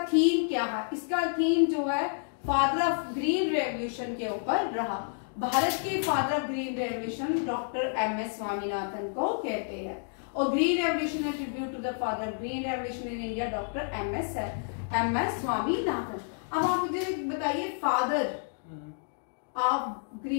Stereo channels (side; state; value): right; silent; digital silence